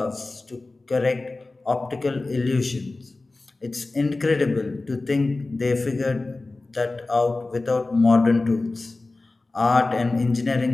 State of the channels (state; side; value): quieter; right; 3.3 dB